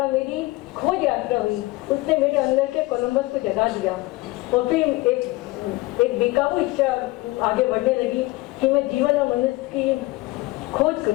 मेरी खोज यात्रा हुई, उसने मेरे अंदर के कोलंबस को जगा दिया और फिर एक बेकाबू इच्छा आगे बढ़ने लगी कि मैं जीवन और मनुष्य की खोज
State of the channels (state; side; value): quieter; right; 21.2 dB